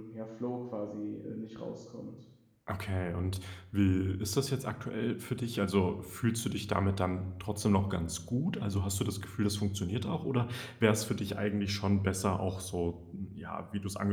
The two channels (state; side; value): identical; both; correlation 1.00